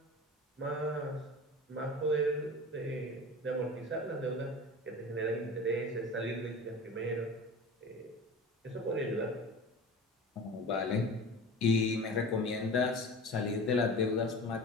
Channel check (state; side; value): normal; both; correlation 0.35